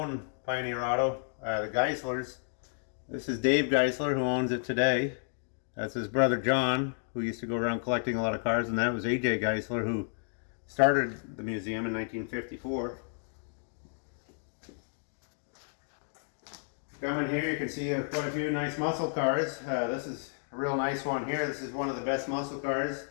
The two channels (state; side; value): silent; right; digital silence